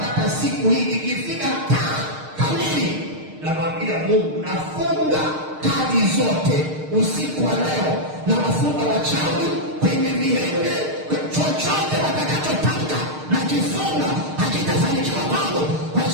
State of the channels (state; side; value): late; left; 6.5 ms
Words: siku hii ikifika kamili, namwambia Mungu, nafunga kazi zote usiku wa leo, na wafunga wachawi kwenye vilenge, chochote watakachotaka na kifunga hakitafanikiwa kwangu kwa